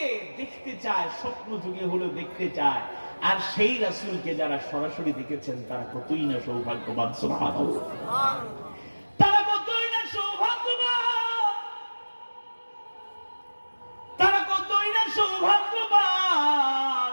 দেখতে চায়, স্বপ্ন যুগে হলো দেখতে চায়, আর সেই রাসূলকে যারা সরাসরি দেখেছেন তারা কতই না সৌভাগ্যবান। সুবহানাল্লাহ। তারা কতই না সৌভাগ্যবান, তারা কতই না সৌভাগ্যবান।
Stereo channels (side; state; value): both; inverted; correlation -1.00